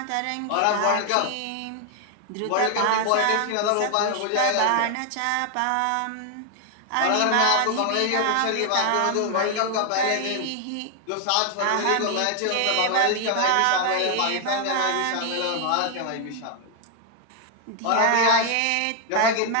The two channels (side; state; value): both; different; correlation 0.00